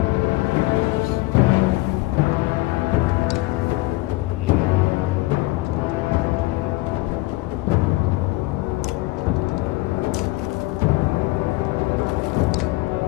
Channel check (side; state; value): right; quieter; 20.6 dB